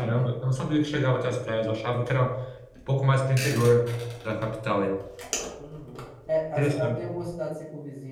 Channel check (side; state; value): both; identical; correlation 1.00